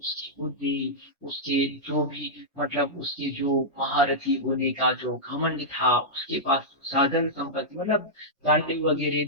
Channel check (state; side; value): normal; both; correlation -0.10